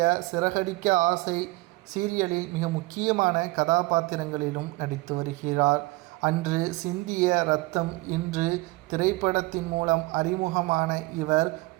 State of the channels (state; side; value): quieter; left; 21.6 dB